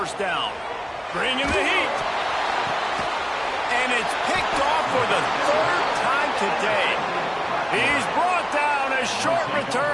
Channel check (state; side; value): identical; both; correlation 1.00